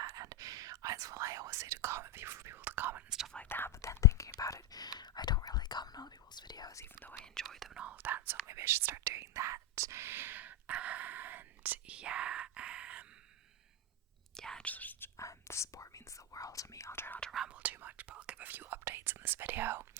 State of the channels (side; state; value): both; normal; correlation 0.06